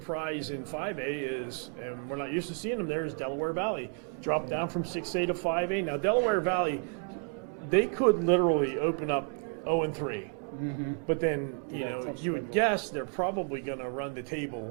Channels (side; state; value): left; quieter; 36.9 dB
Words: in 5A is, and we're not used to seeing them there, is Delaware Valley. Dropped down from 6A to 5A. Now, Delaware Valley, they could literally open up 0-3. But then, you Yeah, know, tough you would schedule. guess they're probably going to run the